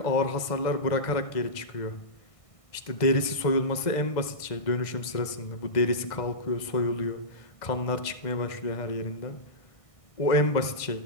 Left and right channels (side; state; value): right; late; 1.6 ms